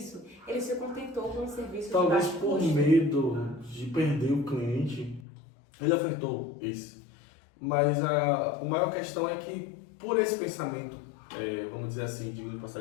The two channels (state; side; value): drops out; right; at 5.2 s